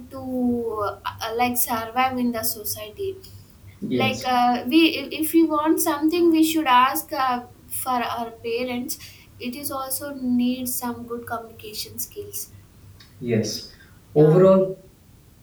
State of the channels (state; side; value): identical; both; correlation 1.00